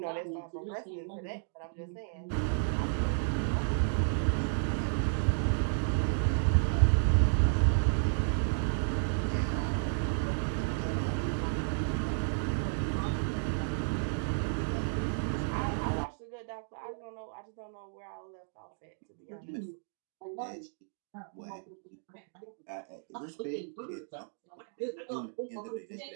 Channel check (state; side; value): silent; left; digital silence